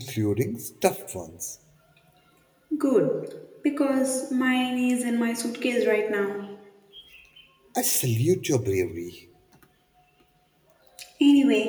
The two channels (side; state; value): both; identical; correlation 1.00